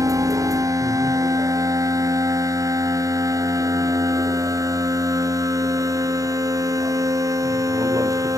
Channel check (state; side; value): late; left; 0.16 ms